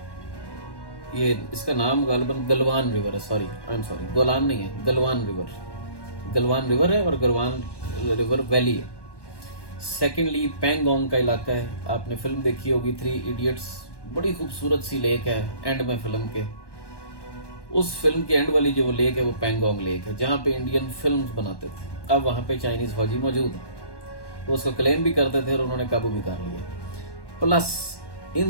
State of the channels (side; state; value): right; late; 1.1 ms